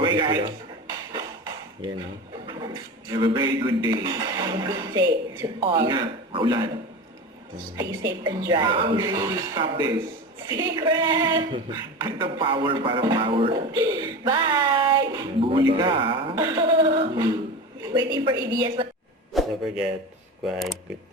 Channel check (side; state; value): both; normal; correlation 0.28